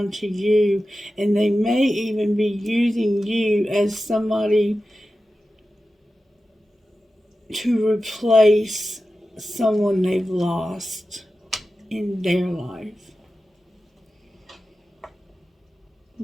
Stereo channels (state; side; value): normal; both; correlation 0.93